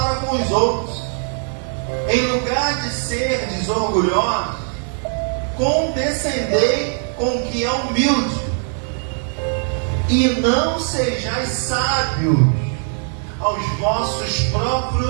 com os outros. Em lugar de ser desorgulhosos, condescendei com o que é humilde, e não sejais sábios aos vossos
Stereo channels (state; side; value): silent; left; 55 dB below the other